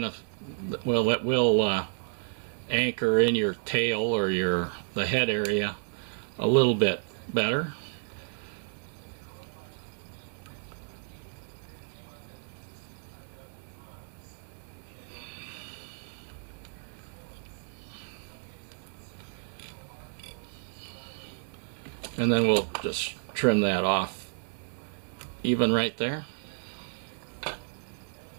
of, well, it will anchor in your tail or the head area a little bit better. And then we'll just trim that off even right there.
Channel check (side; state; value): left; silent; 57 dB below the other